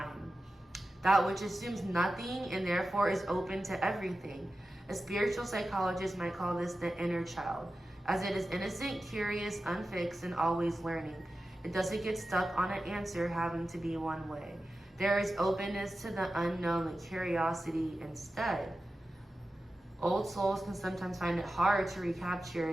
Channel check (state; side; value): normal; both; correlation 0.93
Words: that which assumes nothing and therefore is open to everything. A spiritual psychologist might call this the inner child, as it is innocent, curious, unfixed, and always learning. It doesn't get stuck on an answer having to be one way. There is openness to the unknown and curiosity instead. Old souls can sometimes find it hard to